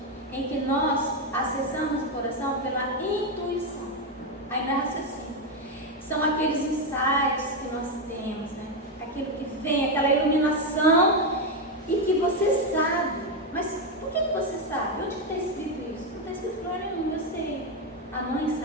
em que nós acessamos o coração pela intuição. Aí não é raciocínio. São aqueles insights que nós temos, né? Aquilo que vem, aquela iluminação, e que você sabe Mas por que você sabe? Onde que está escrito isso? Não está escrito lugar nenhum, eu sei. A mãe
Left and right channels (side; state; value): both; normal; correlation 0.07